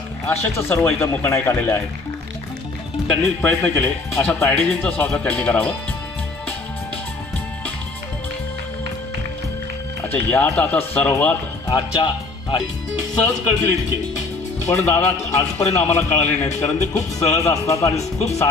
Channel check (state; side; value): quieter; right; 3.6 dB